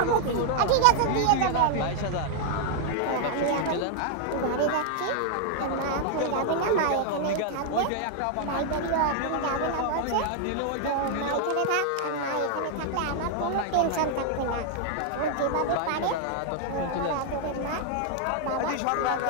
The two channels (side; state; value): both; different; correlation 0.00